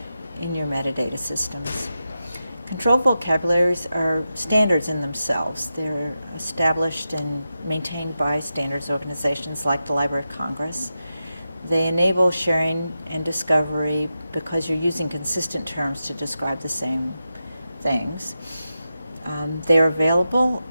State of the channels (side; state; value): both; inverted; correlation -0.90